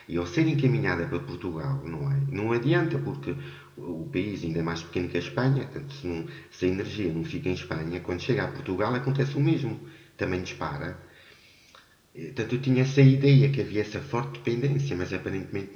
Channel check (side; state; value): both; identical; correlation 1.00